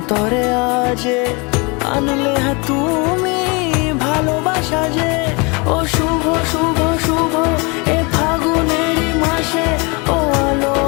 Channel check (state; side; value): quieter; right; 29.4 dB